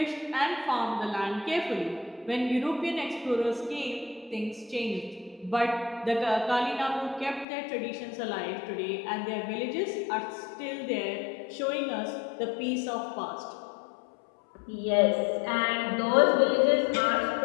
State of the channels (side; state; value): right; drops out; at 7.5 s